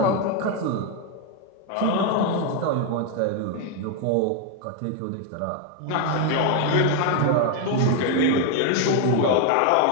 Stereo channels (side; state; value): both; different; correlation 0.01